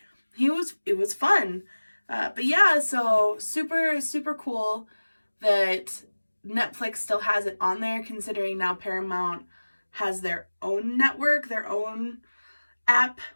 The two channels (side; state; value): both; inverted; correlation -1.00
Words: it was fun. But yeah, so super, super cool that Netflix still has it on there, considering now Paramount has their own network, their own app